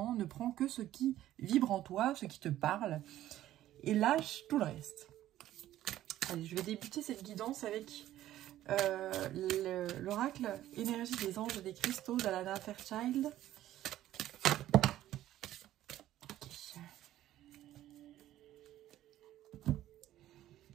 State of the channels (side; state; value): left; quieter; 13.4 dB